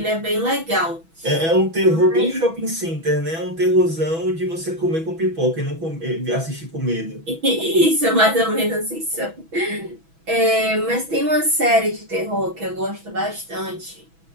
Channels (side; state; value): left; late; 6.1 ms